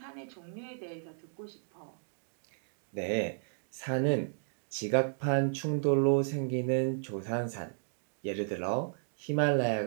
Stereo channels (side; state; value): left; silent; digital silence